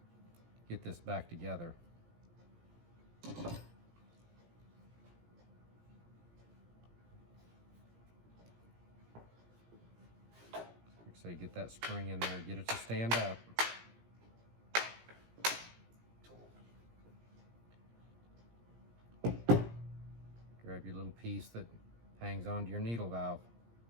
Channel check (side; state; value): left; late; 17 ms